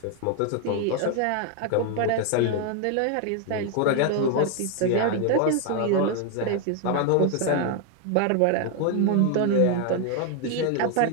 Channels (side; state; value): both; different; correlation 0.01